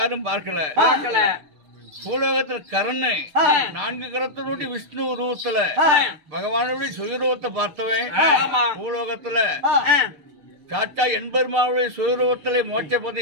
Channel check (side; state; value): left; late; 6.6 ms